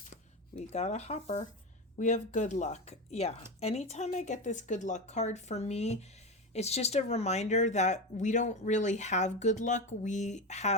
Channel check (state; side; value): normal; both; correlation 0.19